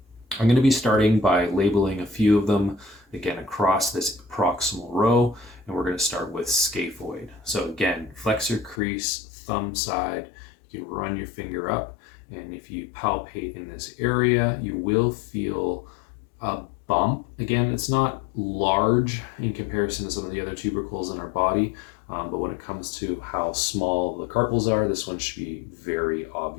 I'm going to be starting by labeling a few of them, again, across this proximal row, and we're going to start with scaphoid. So again, flexor crease, thumb side, you can run your finger up, and if you palpate in this area, you will feel a bump. Again, it's not large in comparison to some of the other tubercles in our body, but when it comes to how small the carpals are, this one should be very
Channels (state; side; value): drops out; right; at 8.8 s